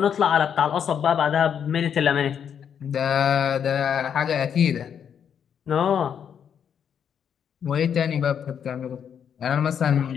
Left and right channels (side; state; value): right; quieter; 8.1 dB